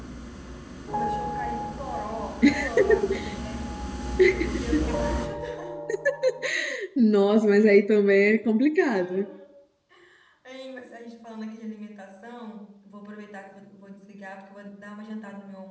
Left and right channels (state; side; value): identical; both; correlation 1.00